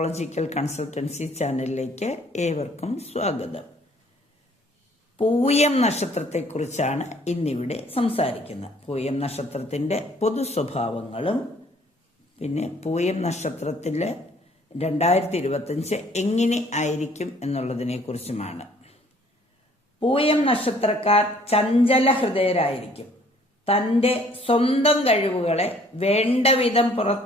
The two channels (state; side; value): normal; both; correlation 0.58